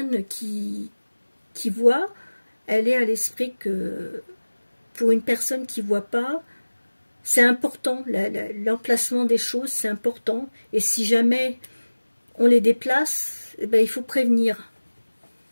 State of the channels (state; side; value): inverted; both; correlation -1.00